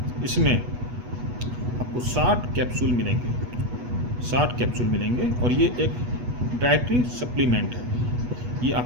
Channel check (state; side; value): late; left; 8.2 ms